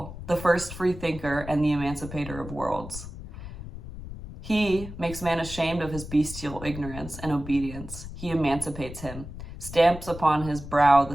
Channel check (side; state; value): left; noise; rumble, 11 dB below the sound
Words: the first free thinker and the emancipator of worlds. He makes man ashamed of his bestial ignorance and obedience. He emancipates him, stamps upon his brow